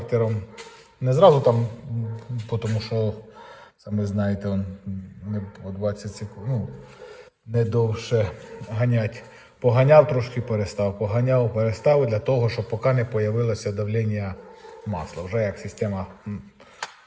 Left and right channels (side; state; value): both; identical; correlation 1.00